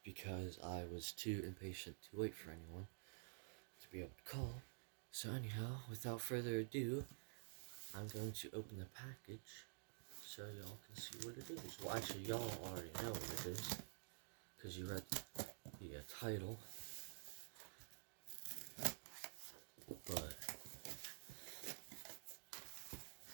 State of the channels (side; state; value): left; silent; digital silence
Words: because I was too impatient to wait for anyone to be able to call. So anyhow, without further ado, I'm going to open the package so y'all can see what it is. Well, actually, y'all already know what it is because you read the title, but